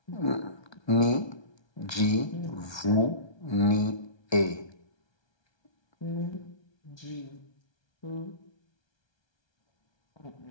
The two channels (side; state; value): right; late; 1.3 ms